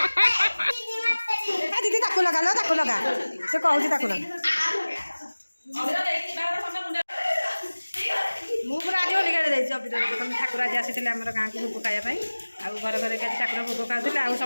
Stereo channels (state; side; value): inverted; both; correlation -1.00